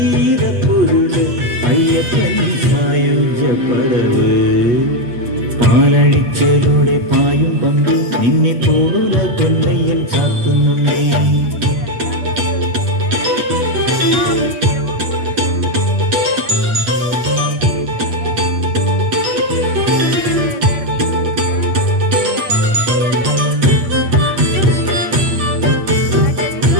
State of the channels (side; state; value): left; late; 8.2 ms